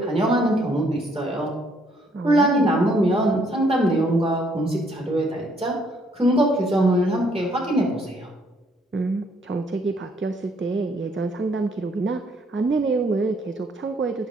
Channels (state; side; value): normal; both; correlation 0.67